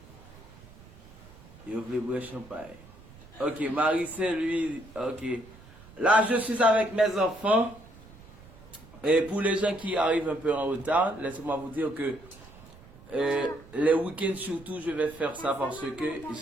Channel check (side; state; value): right; noise; rumble, 21 dB below the sound